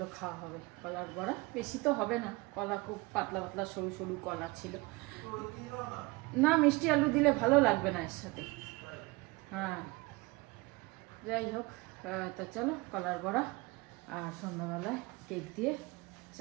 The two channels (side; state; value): left; quieter; 24.0 dB